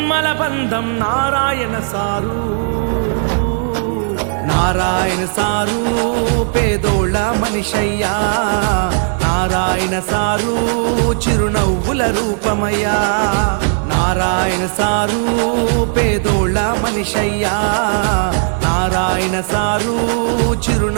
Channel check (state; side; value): silent; left; digital silence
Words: బంధం నారాయణ సారు. నారాయణ సారు పేదోళ్ళ మనిషయ్యా, నారాయణ సారు చిరునవ్వుల రూపమయ్యా. నారాయణ సారు పేదోళ్ళ మనిషయ్యా, నారాయణ సారు